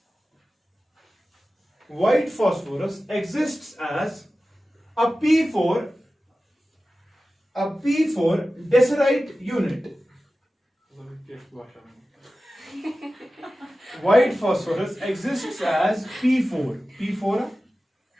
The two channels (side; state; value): both; normal; correlation 0.95